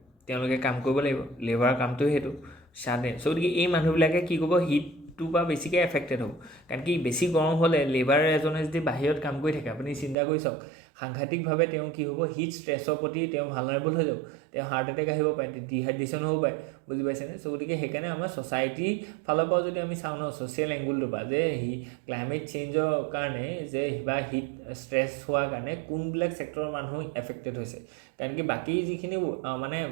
তেওঁলোকে কাম কৰিব লাগিব লেবাৰ কামটো সেইটো চাডেন চ' গতিকে এই মানুহবিলাকে কি কৰিব হিটটোৰ পৰা বেছিকৈ এফেক্টেড হ'ব কাৰণ কি বেছি গৰম হ'লে লেবাৰ এজনে যদি বাহিৰত কাম কৰি থাকে আপুনি চিন্তা কৰি চাওক সাংঘাতিকভাৱে তেওঁ কি হ'ব হিট ষ্ট্ৰেছৰ প্ৰতি তেওঁ ভালনাৰেবল হৈ যাব তেওঁ হাৰ্ট এটেক আহিব পাৰে ডিহাইড্ৰেশ্যন হ'ব পাৰে বুজি পাইছেনে চ' গতিকে সেইকাৰণে আমাৰ ছ'চাইটিৰ ফালৰ পৰা যদি আমি চাওঁ ন ছ'চিয়েল এংগুলটোৰ পৰা যে ক্লাইমেট চেঞ্জৰ কাৰণে যে বা হিট ষ্ট্ৰেছ হোৱাৰ কাৰণে কোনবিলাক ছেক্টৰৰ মানুহ এফেক্টেড হৈছে কাৰণ কি বাকী যিখিনি মানে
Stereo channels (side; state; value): left; drops out; at 10.2 s